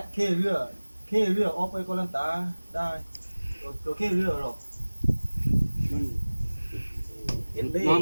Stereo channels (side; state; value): both; inverted; correlation -1.00